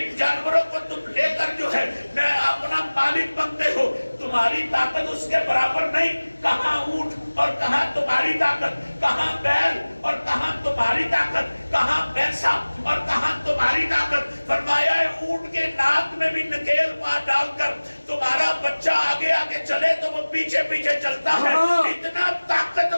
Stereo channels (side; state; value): both; inverted; correlation -1.00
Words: جانوروں کو تم لے کر جو ہے میں اپنا مالک بنتے ہو. تمہاری طاقت اس کے برابر نہیں. کہاں اونٹ اور کہاں تمہاری طاقت، کہاں بیل اور کہاں تمہاری طاقت، کہاں بھینسا اور کہاں تمہاری طاقت. فرمایا اونٹ کے ناک میں بھی نکیل مار ڈال کر تمہارا بچہ آگے آگے چلے تو وہ پیچھے پیچھے چلتا ہے. اتنا طاقت